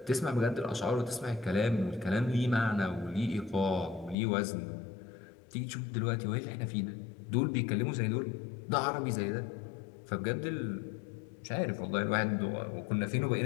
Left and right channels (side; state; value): right; drops out; at 4.2 s